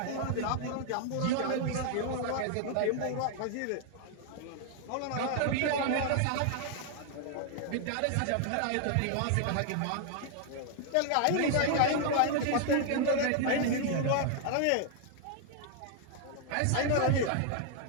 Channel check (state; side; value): different; both; correlation 0.00